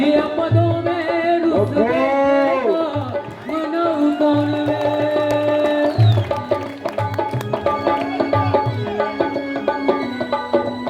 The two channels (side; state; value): both; identical; correlation 1.00